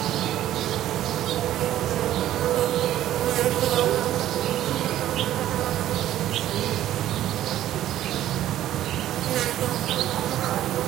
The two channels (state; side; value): quieter; left; 12.8 dB